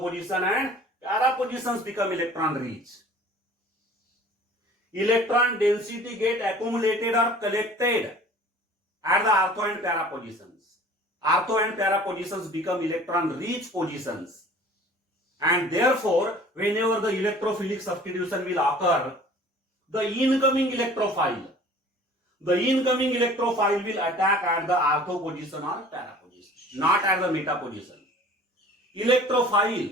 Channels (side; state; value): both; normal; correlation 0.47